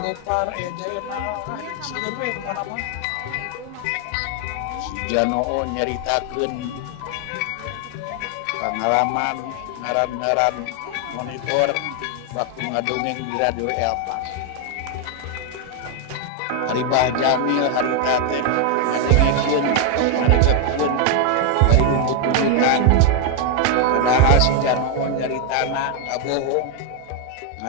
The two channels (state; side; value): different; both; correlation 0.01